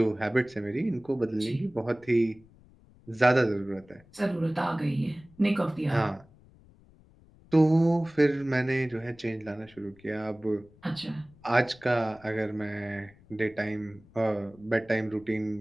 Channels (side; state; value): left; noise; rumble, 26 dB below the sound